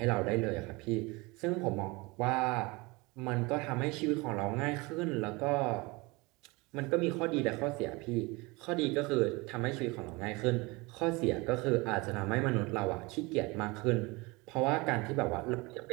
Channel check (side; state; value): left; quieter; 24.8 dB